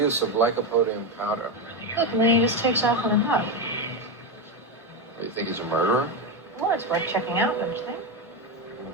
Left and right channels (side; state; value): both; normal; correlation 0.12